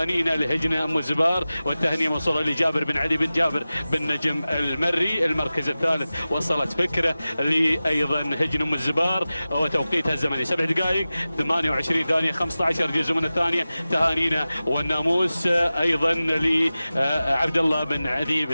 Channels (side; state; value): both; inverted; correlation -0.96